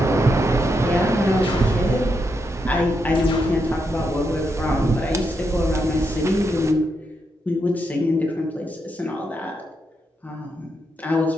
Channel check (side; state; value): both; normal; correlation 0.82